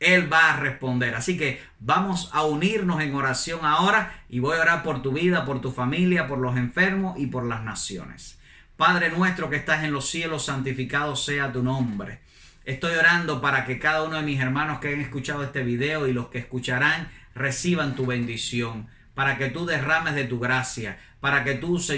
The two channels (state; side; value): identical; both; correlation 1.00